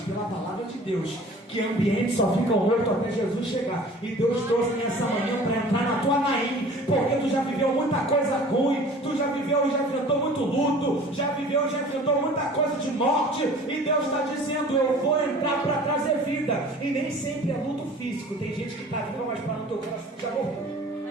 palavra de Deus. Deus, que ambientes só ficam mortos até Jesus chegar. E Deus trouxe nessa manhã para entrar na tua Naim, porque tu já viveu muita coisa ruim, tu já viveu e já enfrentou muito luto, já viveu e já enfrentou muita coisa de morte, e Deus está dizendo: eu vou entrar para trazer vida. E nem sempre é luto físico, tem gente que está viva, mas para no teu coração já morreu.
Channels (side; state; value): both; normal; correlation 0.45